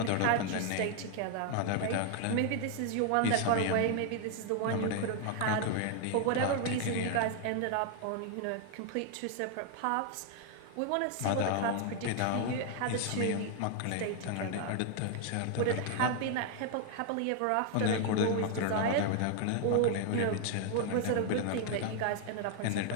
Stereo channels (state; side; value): different; both; correlation 0.00